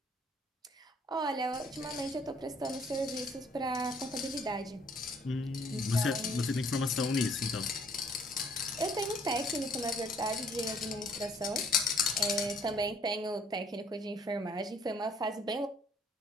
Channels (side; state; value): both; normal; correlation 0.62